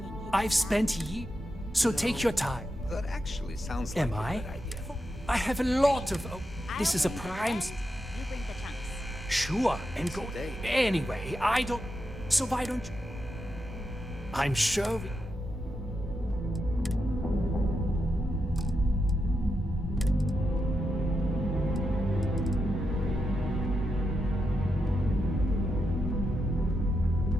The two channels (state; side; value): normal; both; correlation 0.86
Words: I've spent years. So take your time. That actually sounds like Am a I? good idea. I have a lot of. Oh, this is a prime. You bring the chunks. Sure, and go. Anyway, I don't. So why don't you? I'm sure.